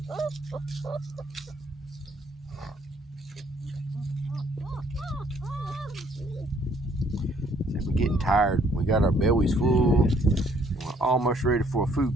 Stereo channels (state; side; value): normal; both; correlation 0.64